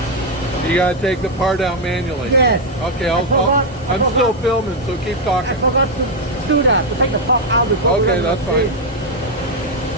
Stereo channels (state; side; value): normal; both; correlation 0.02